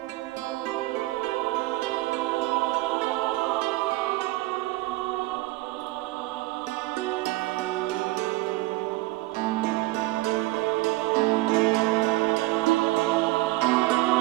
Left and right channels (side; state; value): left; quieter; 19.5 dB